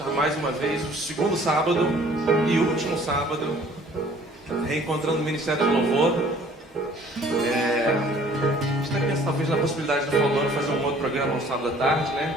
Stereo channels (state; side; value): normal; both; correlation 0.54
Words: mais uma vez, o segundo sábado e último sábado, reencontrando o Ministério de Louvor. A gente está pensando talvez na possibilidade do Falando fazer um outro programa no sábado à tarde, né?